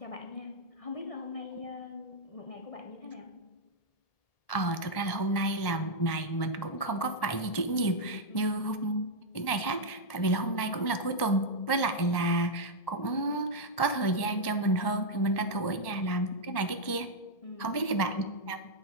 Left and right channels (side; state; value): right; late; 1.7 ms